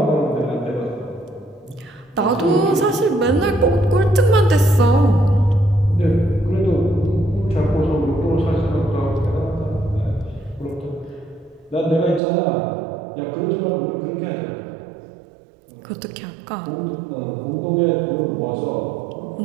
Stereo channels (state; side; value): drops out; left; at 12.2 s